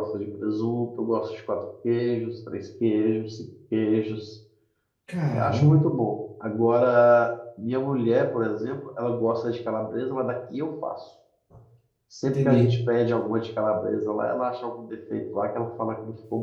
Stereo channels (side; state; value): both; identical; correlation 1.00